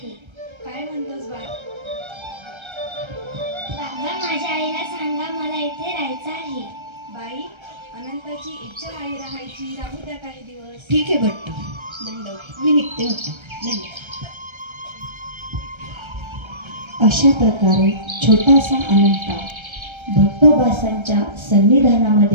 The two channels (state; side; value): late; left; 1.3 ms